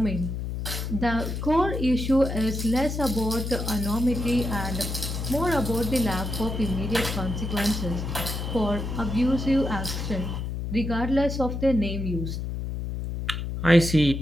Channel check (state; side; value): noise; left; hum, 4 dB below the sound